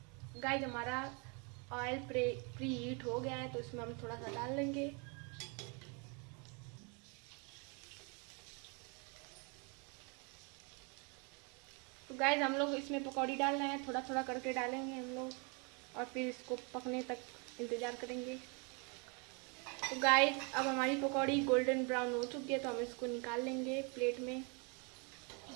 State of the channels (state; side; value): quieter; left; 33.9 dB